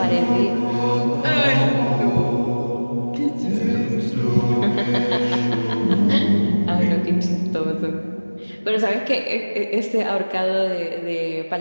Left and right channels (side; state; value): both; inverted; correlation -1.00